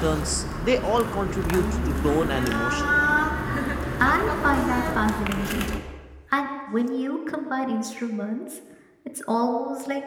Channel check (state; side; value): identical; both; correlation 1.00